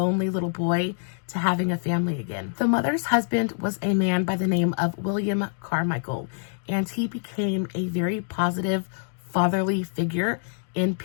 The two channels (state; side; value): silent; right; digital silence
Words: little boy to having a family again. The mother's husband was a man by the name of William Carmichael, and he became a very positive, fatherly figure in